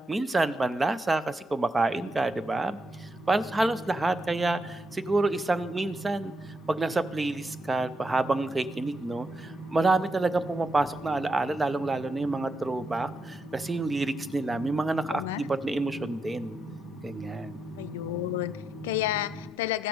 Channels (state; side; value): normal; both; correlation 0.82